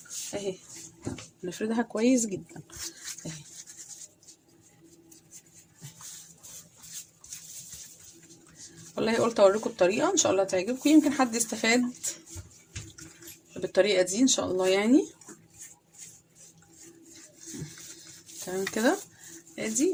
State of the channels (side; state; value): both; identical; correlation 1.00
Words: اهي، نفردها كويس جدا اهي. والله قلت اوريكم الطريقه ان شاء الله تعجبكم، يمكن حد يستفاد بالطريقه دي ان شاء الله يعني. تمام كده. ادي